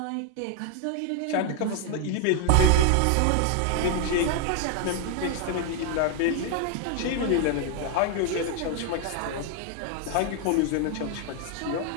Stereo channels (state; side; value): different; both; correlation 0.00